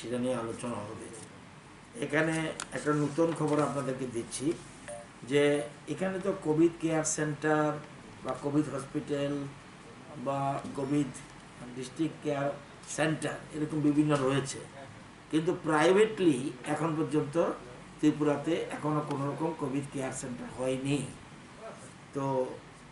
নিয়ে আলোচনা হবে। এখানে একটা নতুন খবর আপনাদেরকে দিচ্ছি যে এখানে তো কোভিড কেয়ার সেন্টার বা কোভিড হসপিটাল বা কোভিড ডিস্ট্রিক্ট কেয়ার সেন্টার এরকম বিভিন্ন রয়েছে, কিন্তু প্রাইভেটলি এখন পর্যন্ত ত্রিপুরাতে এখনও কোনো রকম কোভিড কেয়ার সেন্টার হয়নি। তো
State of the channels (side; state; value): both; identical; correlation 1.00